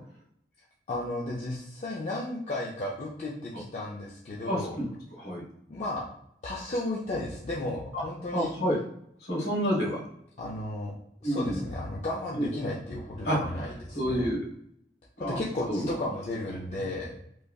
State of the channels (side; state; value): both; normal; correlation 0.53